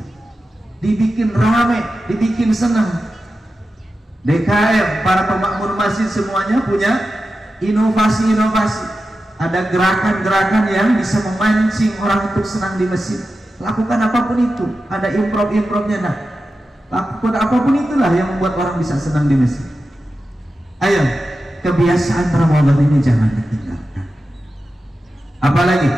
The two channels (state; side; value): normal; both; correlation 0.92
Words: dibikin ramai, dibikin senang. DKM, para pemakmur masjid semuanya punya inovasi-inovasi, ada gerakan-gerakan yang bisa memancing orang untuk senang di masjid. Lakukan apapun itu, ada improv-improvnya. Nah, lakukan apapun itulah yang membuat orang bisa senang di masjid. Ayo, kebiasaan Ramadan ini jangan ditinggalkan. Apalagi